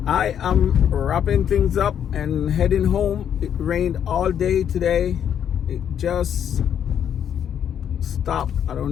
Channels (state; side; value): quieter; right; 9.0 dB